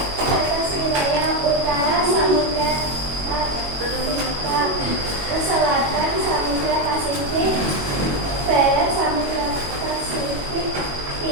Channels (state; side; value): late; left; 21 ms